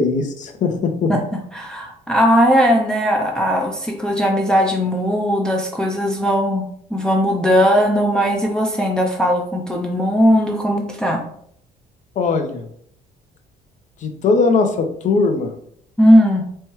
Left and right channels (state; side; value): normal; both; correlation 0.71